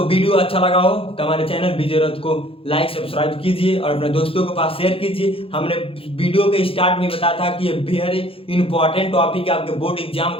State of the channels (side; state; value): right; late; 0.27 ms